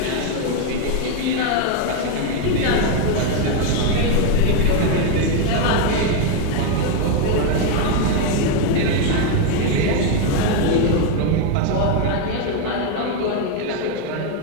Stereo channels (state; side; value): different; both; correlation 0.01